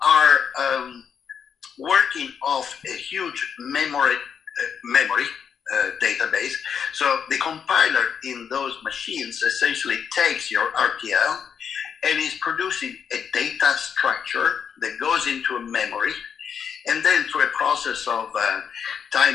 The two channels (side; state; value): right; quieter; 7.3 dB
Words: are working off a huge memory database. So the compiler in those machines essentially takes your RTL and is producing a data structure that goes into a memory, and then through a process of